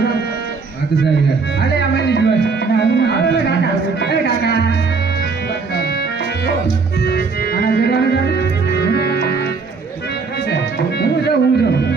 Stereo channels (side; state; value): left; quieter; 4.6 dB